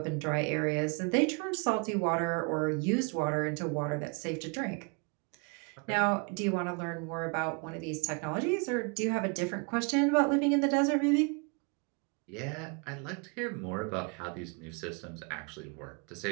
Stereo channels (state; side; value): quieter; left; 34.2 dB